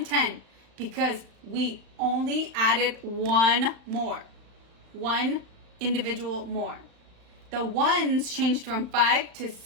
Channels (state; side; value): late; left; 35 ms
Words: because we only added one more. One individual more. The 1s changed from 5 to